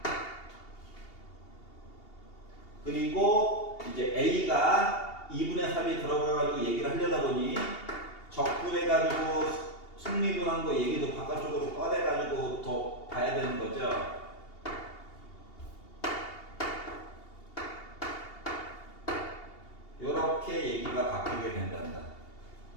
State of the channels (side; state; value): right; late; 2.8 ms